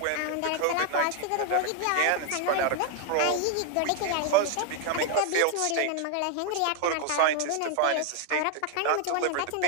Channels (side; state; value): both; different; correlation 0.00